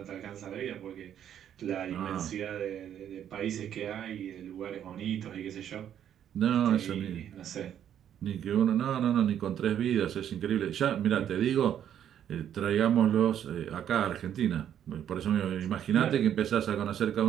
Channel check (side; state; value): left; quieter; 9.9 dB